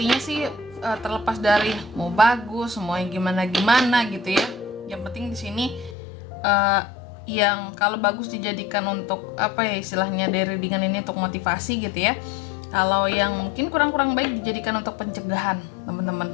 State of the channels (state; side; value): drops out; right; at 6.0 s